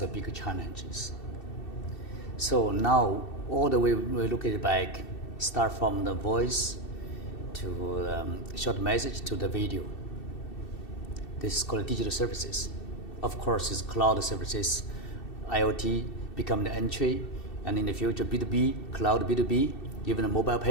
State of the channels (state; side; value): late; right; 2.7 ms